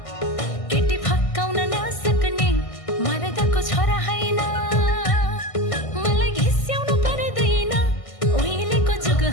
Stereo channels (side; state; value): right; late; 1.6 ms